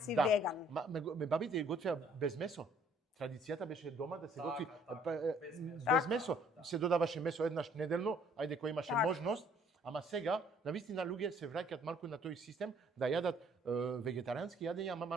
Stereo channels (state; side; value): normal; both; correlation 0.61